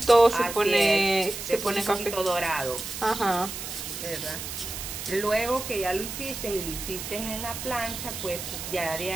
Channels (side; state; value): right; noise; hiss, 7 dB below the sound